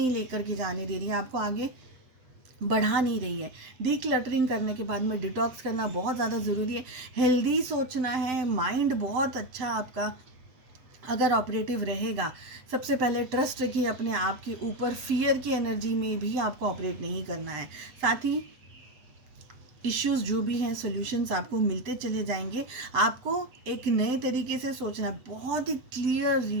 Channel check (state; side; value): late; left; 8.3 ms